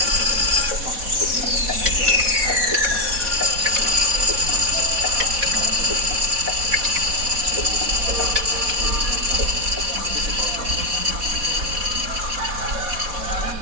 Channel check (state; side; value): late; left; 4.1 ms